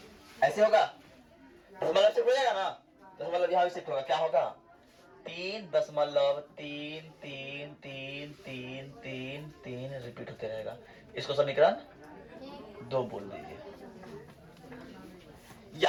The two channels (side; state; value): both; identical; correlation 1.00